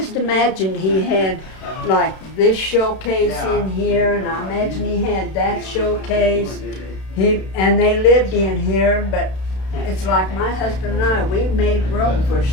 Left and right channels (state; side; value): late; right; 32 ms